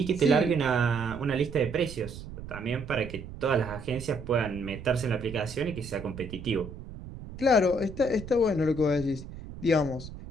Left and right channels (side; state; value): right; noise; rumble, 12 dB below the sound